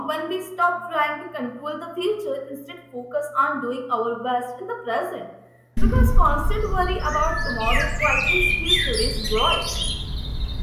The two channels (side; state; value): both; identical; correlation 1.00